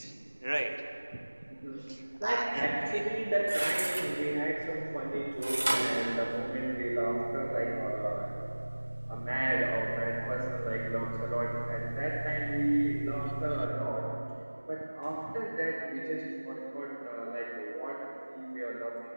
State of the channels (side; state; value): both; inverted; correlation -1.00